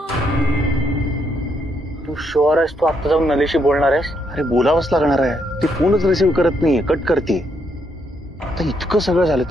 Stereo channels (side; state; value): both; normal; correlation 0.76